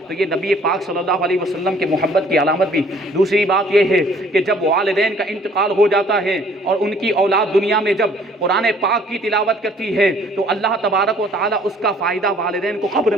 تو یہ نبی پاک صلی اللہ علیہ وسلم کی محبت کی علامت بھی۔ دوسری بات یہ ہے کہ جب والدین کا انتقال ہو جاتا ہے اور ان کی اولاد دنیا میں جب قرآن پاک کی تلاوت کرتی ہے تو اللہ تبارک و تعالیٰ اس کا فائدہ والدین کو قبر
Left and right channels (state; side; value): normal; both; correlation 0.57